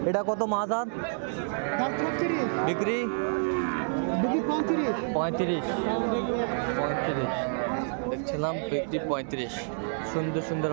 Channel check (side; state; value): left; silent; digital silence